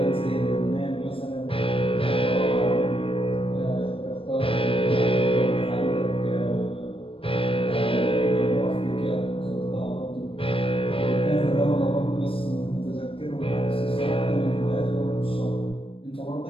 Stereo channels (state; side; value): late; right; 0.26 ms